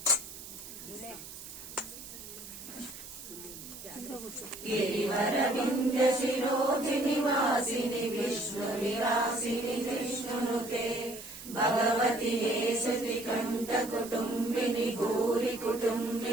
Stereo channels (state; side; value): noise; right; hiss, 13 dB below the sound